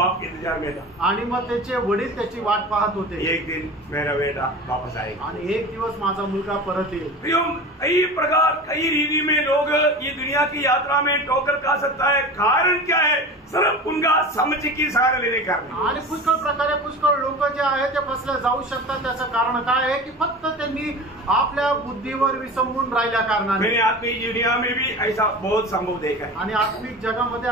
के इंतजार में था। आणि मग त्याचे वडील त्याची वाट पाहत होते। एक दिन मेरा बेटा वापस आएगा आणि एक दिवस माझा मुलगा परत येईल। प्रियो, कई प्रकार कई रीति में लोग ये दुनिया की यात्रा में ठोकर खा सकता है। कारण क्या है? सिर्फ उनका समझ की सहारा लेने का। आणि पुष्कळ प्रकारे पुष्कळ लोक जे आहे ते फसले जाऊ शकतात। त्याचं कारण काय आहे की फक्त त्यांनी आपल्या बुद्धीवर विसंबून राहिल्या कारणाने। मैंने आत्मिक दुनिया में भी ऐसा बहुत संभव देखा है। आणि आत्मिक जगामध्ये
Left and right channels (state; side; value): normal; both; correlation 0.33